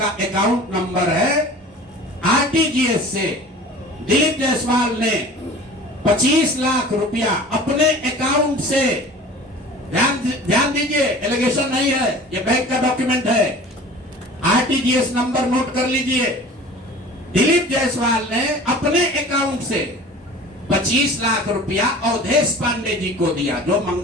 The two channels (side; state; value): both; normal; correlation 0.42